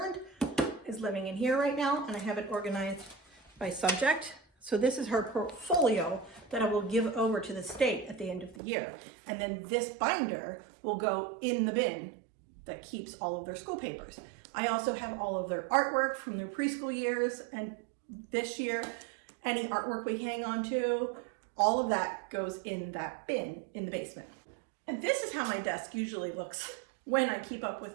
is living in here right now, and I have it organized by subject. So this is her portfolio that I will give over to the state at the end of the year. And then this binder will go in the bin that keeps all of their school papers. I also have all of their artwork from their preschool years, and this year, any artwork we hang on to, all of that goes in that bin in the basement. And this is how my desk usually looks when I keep up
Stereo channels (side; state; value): left; drops out; at 8.6 s